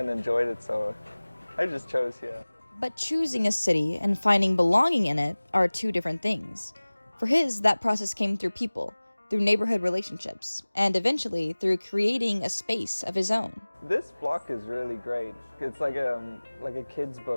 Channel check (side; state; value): both; inverted; correlation -1.00